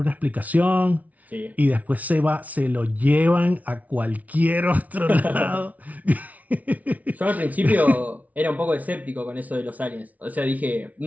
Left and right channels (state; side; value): late; left; 0.072 ms